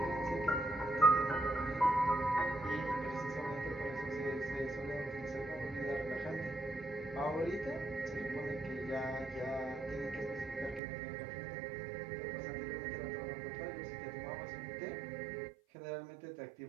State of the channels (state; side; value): drops out; left; at 10.8 s